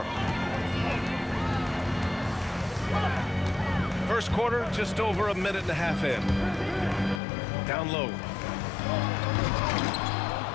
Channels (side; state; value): right; drops out; at 7.2 s